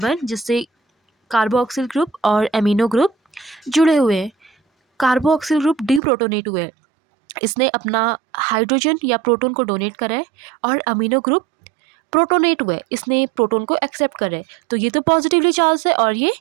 जिससे कार्बोक्सिल ग्रुप और एमिनो ग्रुप जुड़े हुए हैं। कार्बोक्सिल ग्रुप डीप्रोटोनेट हुए हैं, इसने अपना हाइड्रोजन या प्रोटॉन को डोनेट करा है, और अमीनो ग्रुप प्रोटोनेट हुए, इसने प्रोटॉन को एक्सेप्ट करे। तो ये तो पॉजिटिवली चार्ज है और ये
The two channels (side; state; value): left; drops out; at 6.0 s